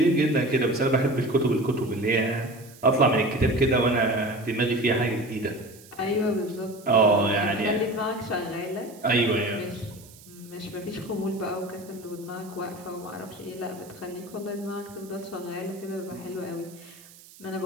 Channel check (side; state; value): right; noise; hiss, 22 dB below the sound